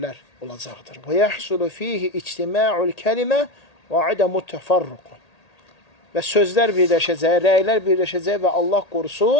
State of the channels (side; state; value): right; late; 1.8 ms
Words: olacaqdır. Və yəhsulu fihi ictima'ul kəlimə və adəmut təfarruq. Və sözlər birləşəcək, rəylər birləşəcək və Allah